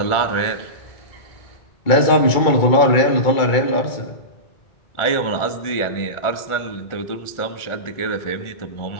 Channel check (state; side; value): late; right; 2.2 ms